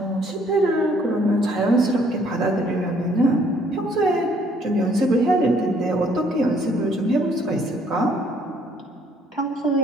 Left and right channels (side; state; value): both; normal; correlation 0.63